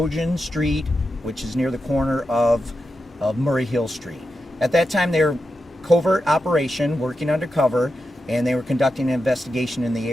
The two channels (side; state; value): both; normal; correlation 0.89